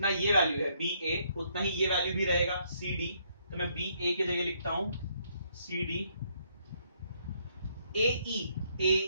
ये वैल्यू है BA उतना ही ये वैल्यू भी रहेगा CD, तो मैं BA की जगह लिखता हूं CD।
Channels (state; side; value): inverted; both; correlation -0.71